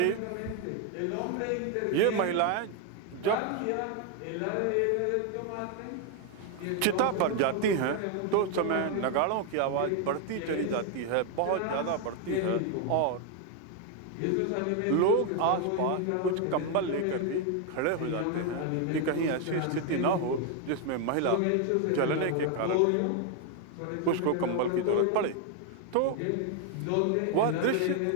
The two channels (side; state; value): both; different; correlation 0.01